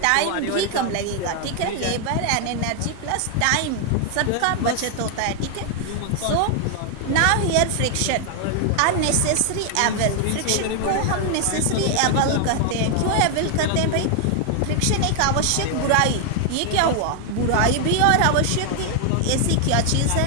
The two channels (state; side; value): different; both; correlation 0.00